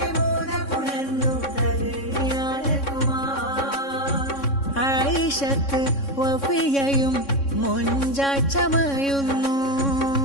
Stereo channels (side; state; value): right; late; 3.6 ms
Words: മോനപുണർന്നു തരുണിയാലകുമാ. ആയിഷത്ത് വഫിയയും മുഞ്ചായി ചമയുന്നു,